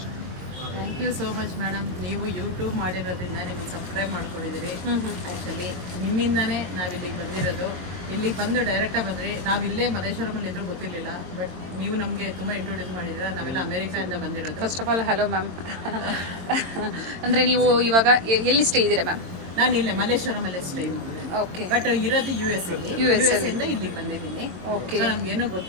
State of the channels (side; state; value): left; late; 22 ms